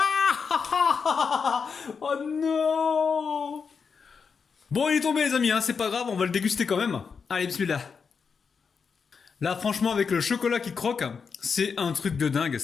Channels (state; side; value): quieter; right; 5.7 dB